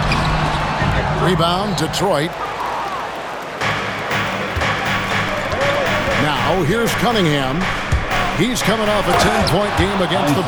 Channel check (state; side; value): identical; both; correlation 1.00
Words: Rebound, Detroit. Now, here's Cunningham. He's coming off a 10-point game against the